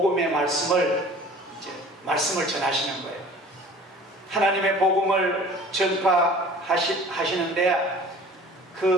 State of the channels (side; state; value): both; normal; correlation 0.46